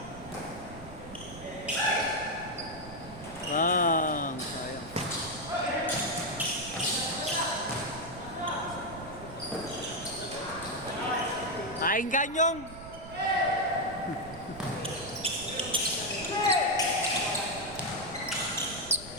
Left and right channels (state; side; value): noise; right; rumble, 14 dB below the sound